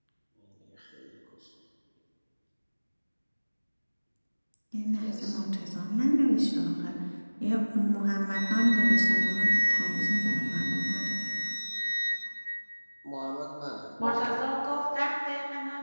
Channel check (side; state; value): both; inverted; correlation -1.00